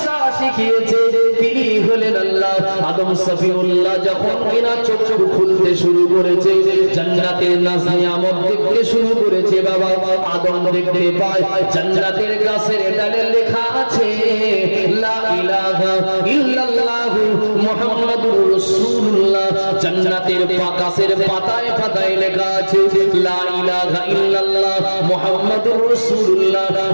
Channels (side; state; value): both; inverted; correlation -1.00